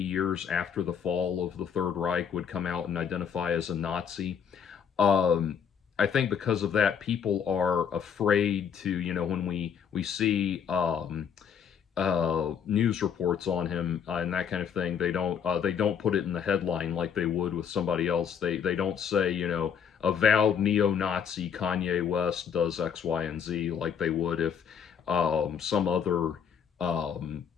after the fall of the Third Reich would come out and identify as a Nazi. Um, I think because of that, people are afraid to, when we see news reports on him and that kind of thing, they don't put it in the headline like they would with somebody else. They don't say, avowed neo-Nazi Kanye West does X, Y, and Z like they would if um, some other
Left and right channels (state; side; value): quieter; right; 7.6 dB